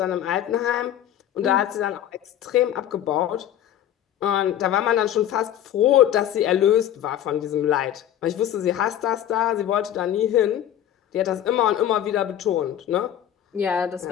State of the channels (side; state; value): right; quieter; 11.1 dB